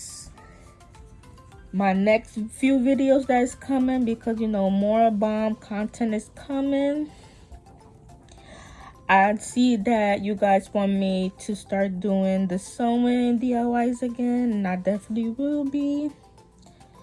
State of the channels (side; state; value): both; identical; correlation 1.00